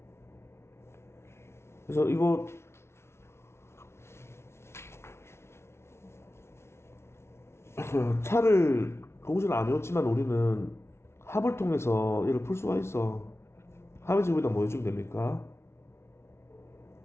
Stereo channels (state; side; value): late; right; 0.13 ms